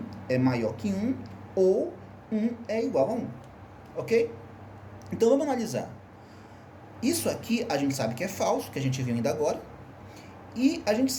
é maior que 1 ou 1 é igual a 1. Ok? Então vamos analisar. Isso aqui a gente sabe que é falso, que a gente viu ainda agora. E a gente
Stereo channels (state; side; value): identical; both; correlation 1.00